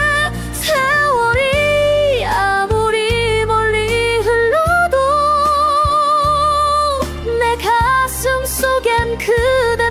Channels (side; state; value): both; identical; correlation 1.00